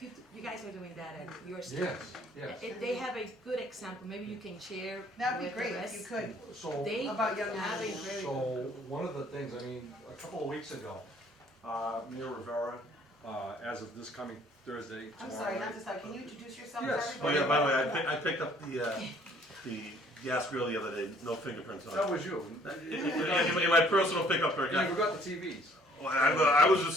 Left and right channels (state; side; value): normal; both; correlation 0.59